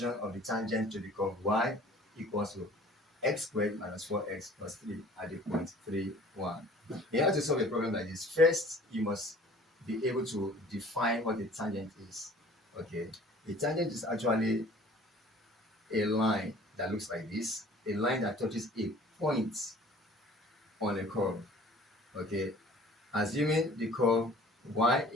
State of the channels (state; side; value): normal; both; correlation 0.49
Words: of the tangent to the curve y equals to x squared minus 4x plus 3 at the point 3, 1. In order to solve a problem like this, first you must be able to define what a tangent is. Okay, a tangent is actually a line that looks like this, a line that touches a point on a curve. Okay, assuming the curve y